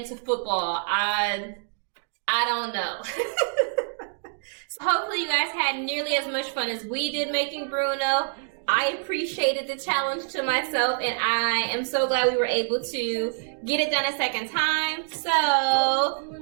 to football. I don't know. So hopefully you guys had nearly as much fun as we did making Bruno. I appreciated the challenge to myself, and I am so glad we were able to get it done a second time. So,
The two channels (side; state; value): left; silent; digital silence